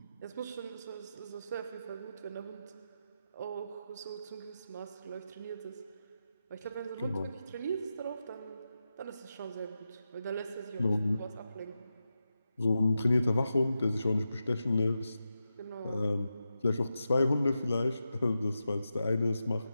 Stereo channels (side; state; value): both; inverted; correlation -0.89